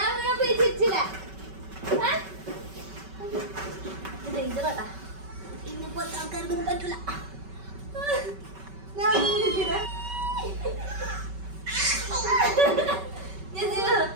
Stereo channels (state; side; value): late; left; 5.2 ms